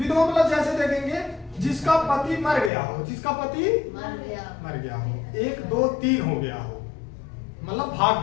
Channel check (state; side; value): drops out; right; at 2.7 s